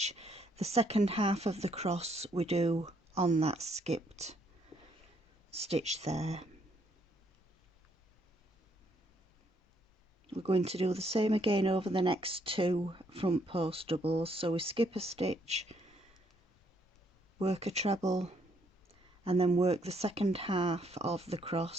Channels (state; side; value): normal; both; correlation 0.70